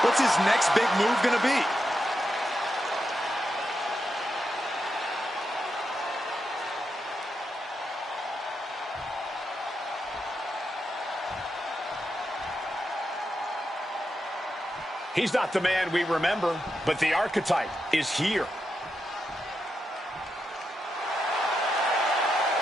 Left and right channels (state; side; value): normal; both; correlation 0.85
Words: What's his next big move going to be? He's not the man we remember, but the archetype is here.